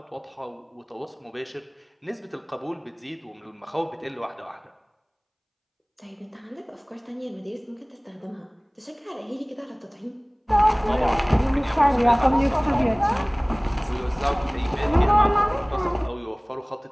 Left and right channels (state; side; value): identical; both; correlation 1.00